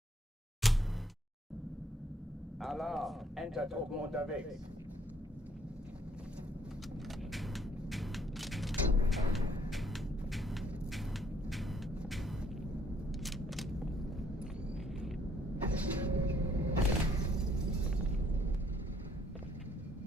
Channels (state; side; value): normal; both; correlation 0.65